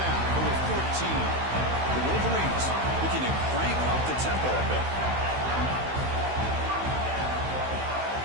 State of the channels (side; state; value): left; late; 16 ms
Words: over 14. The Wolverines looking to crank up the tempo a bit.